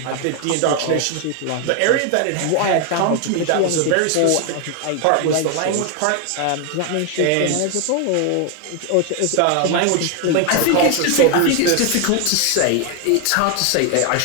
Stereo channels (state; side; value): different; both; correlation 0.01